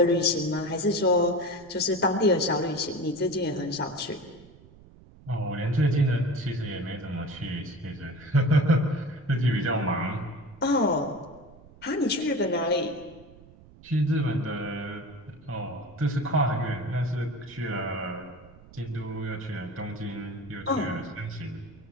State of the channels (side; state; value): right; noise; rumble, 23 dB below the sound